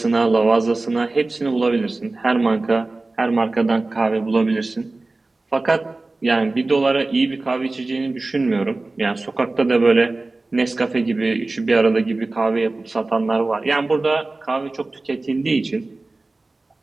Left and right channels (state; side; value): quieter; left; 3.2 dB